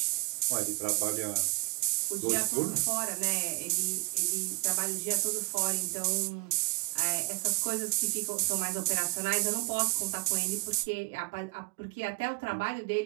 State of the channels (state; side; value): quieter; left; 26.4 dB